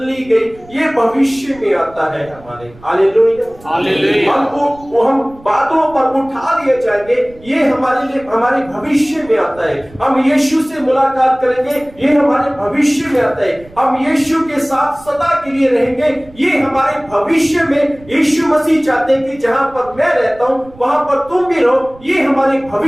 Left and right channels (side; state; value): right; noise; rumble, 23 dB below the sound